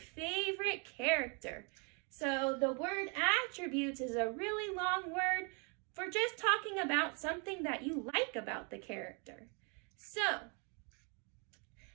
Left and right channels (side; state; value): left; quieter; 35.5 dB